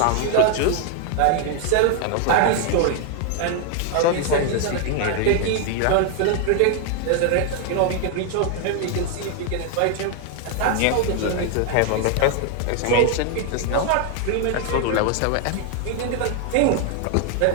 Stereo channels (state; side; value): different; both; correlation 0.00